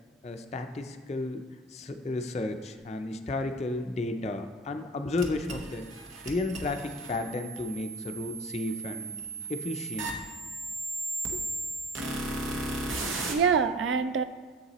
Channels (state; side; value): normal; both; correlation 0.40